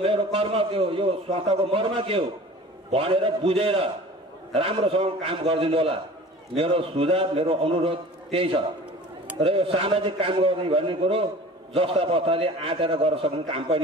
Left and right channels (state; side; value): normal; both; correlation 0.42